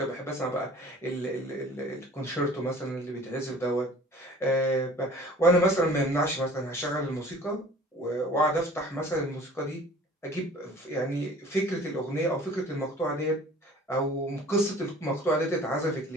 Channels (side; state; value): both; normal; correlation 0.47